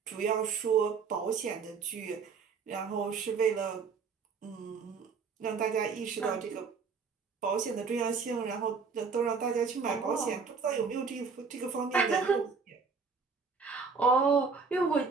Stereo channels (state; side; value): quieter; left; 5.3 dB